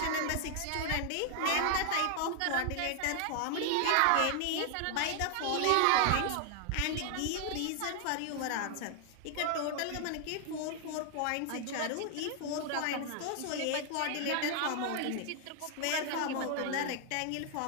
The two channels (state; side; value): different; both; correlation 0.00